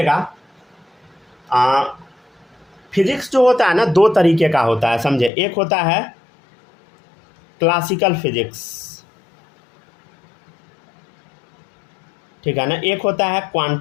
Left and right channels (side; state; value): right; drops out; at 5.3 s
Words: फिजिक्स जो होता है ना दो तरीके का होता है, समझे। एक होता है क्लासिकल फिजिक्स, ठीक है ना। एक होता है